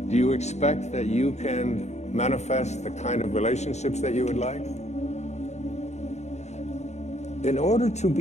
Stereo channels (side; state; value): right; late; 0.32 ms